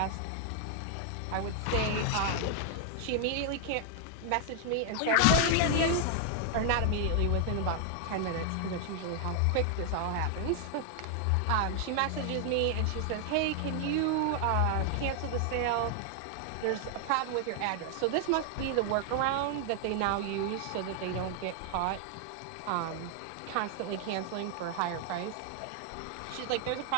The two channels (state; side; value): different; both; correlation 0.00